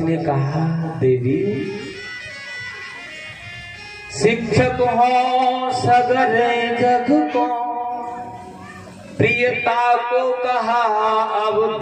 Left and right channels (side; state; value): both; identical; correlation 1.00